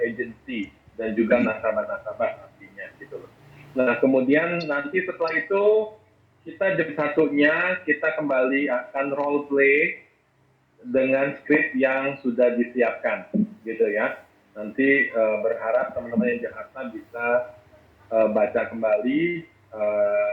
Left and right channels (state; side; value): identical; both; correlation 1.00